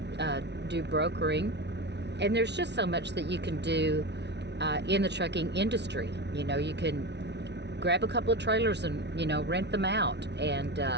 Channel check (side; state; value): left; late; 0.50 ms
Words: do brokering. And there's just so much that you can do in the trucking industry. You can grab a couple of trailers and, rent them out. And,